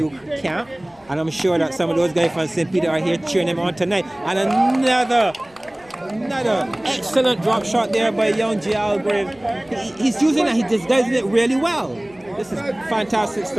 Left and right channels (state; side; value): noise; left; rumble, 29 dB below the sound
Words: camp. And I'm sure that some of those guys from St. Peter are here cheering him on tonight. And another excellent drop shot there by young Jael Greaves. He's using it, he's disguising it really well. This is fantastic